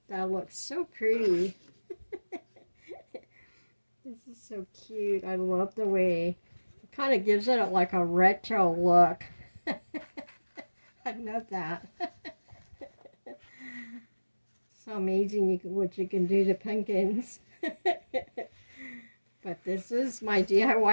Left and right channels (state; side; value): inverted; both; correlation -1.00